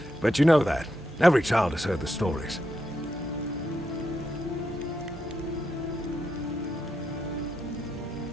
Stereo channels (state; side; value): normal; both; correlation 0.83